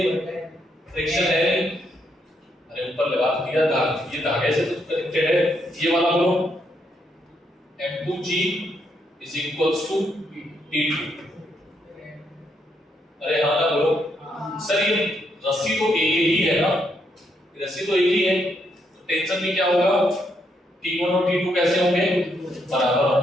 फ्रिक्शन है नहीं। अरे ऊपर दिया धागे, ये धागे से तो कनेक्टेड है, ये वाला बोलो M2G is equals to T2। अरे हाँ ना बोलो सर, ये रस्सी तो एक ही है ना, रस्सी तो एक ही है, तो टेंशन भी क्या होगा, T1 और T2 कैसे होंगे, बराबर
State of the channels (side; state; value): both; normal; correlation 0.76